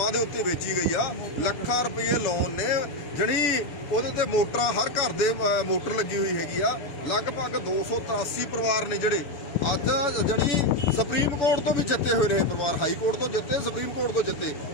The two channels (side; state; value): right; late; 7.0 ms